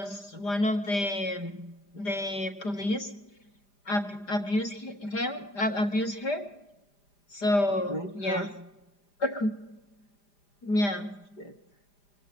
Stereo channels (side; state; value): right; late; 5.0 ms